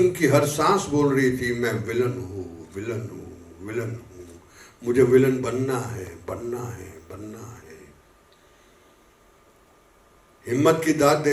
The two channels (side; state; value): both; identical; correlation 1.00